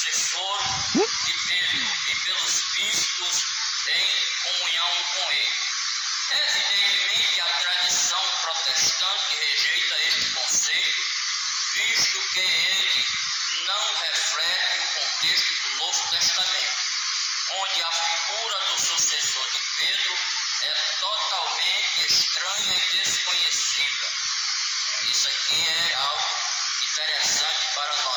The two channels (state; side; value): identical; both; correlation 1.00